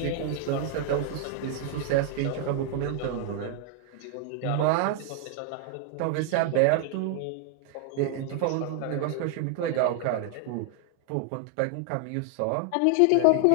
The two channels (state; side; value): different; both; correlation 0.00